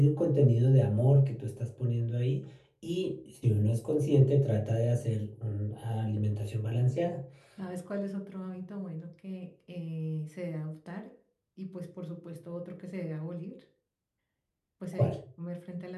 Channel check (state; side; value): identical; both; correlation 1.00